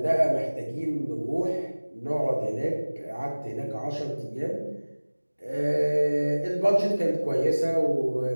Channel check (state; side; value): inverted; both; correlation -1.00